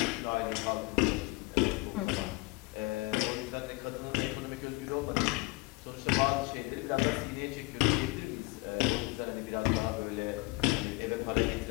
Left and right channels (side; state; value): right; quieter; 23.4 dB